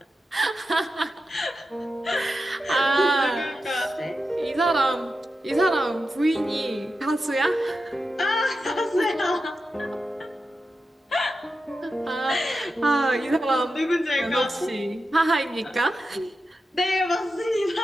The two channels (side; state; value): both; normal; correlation 0.90